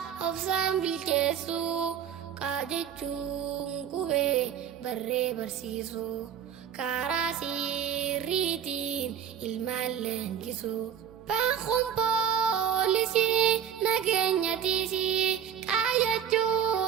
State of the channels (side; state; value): left; quieter; 8.8 dB